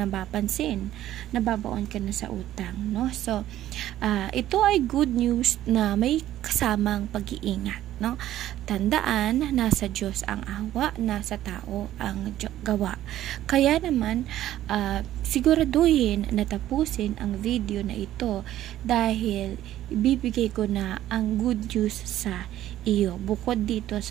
nababaon ka na sa utang, no? So, ito ay good news na may kasamang pag-iingat, no? Tandaan, nasa Diyos ang awa, nasa tao ang gawa. Kaya naman, siguraduhin na tapusin ang video na ito dahil ibibigay ko na ang good news sa iyo bukod dito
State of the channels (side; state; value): left; quieter; 13.1 dB